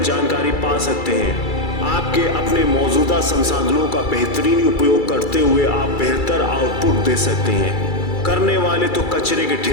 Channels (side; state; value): right; late; 2.3 ms